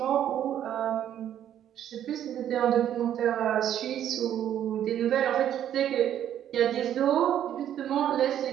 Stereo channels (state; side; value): quieter; left; 10.6 dB